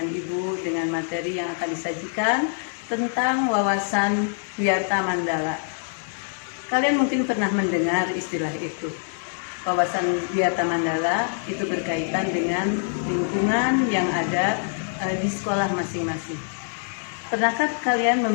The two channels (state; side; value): silent; right; 62 dB below the other